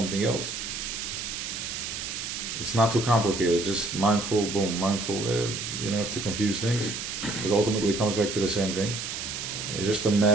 else. It's not too complicated, just mindful, boom, mindful. You don't have to confuse things, because ultimately it comes back to the same thing. It's just a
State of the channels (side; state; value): right; noise; hiss, 5 dB below the sound